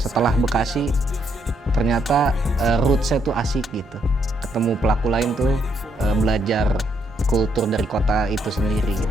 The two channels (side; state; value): both; normal; correlation 0.75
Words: Bekasi, ternyata roots-nya tuh asik gitu. Ketemu pelaku lain tuh belajar kultur dari kota itu sendiri